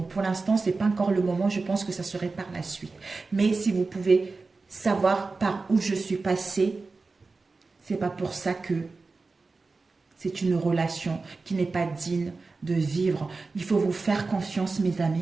pour l'instant, ce n'est pas encore le moment, je pense que ça serait par la suite. Mais si vous pouvez savoir par où je suis passée, ce n'est pas pour ça que c'est une relation qui n'est pas digne de vivre. Il faut vous faire confiance, mes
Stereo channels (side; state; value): left; quieter; 3.9 dB